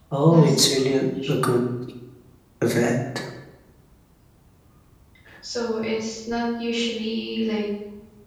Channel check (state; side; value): identical; both; correlation 1.00